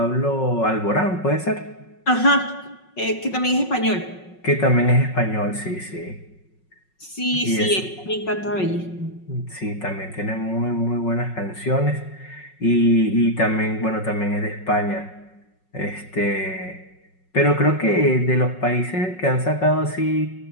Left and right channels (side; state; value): right; late; 5.4 ms